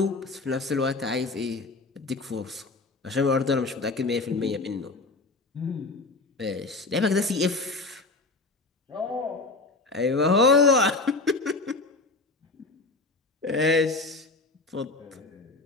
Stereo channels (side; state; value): right; quieter; 3.5 dB